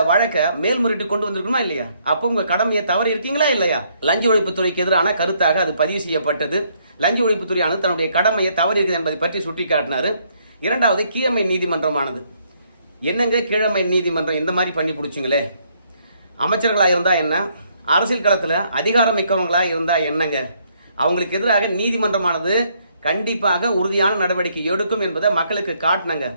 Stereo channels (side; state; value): both; inverted; correlation -0.70